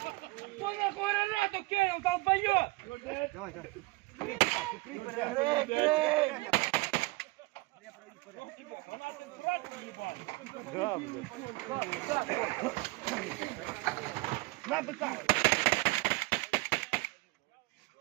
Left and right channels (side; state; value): left; quieter; 23.3 dB